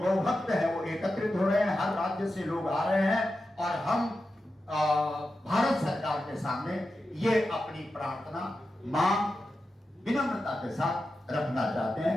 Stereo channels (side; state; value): both; normal; correlation 0.91